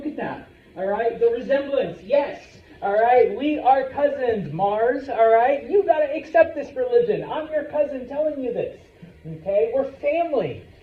at that. All right? The resemblance, yes. All right? We are cousins, Mars. All right? You got to accept this religion. I'm your cousin telling you this. Okay? We're family.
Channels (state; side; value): identical; both; correlation 1.00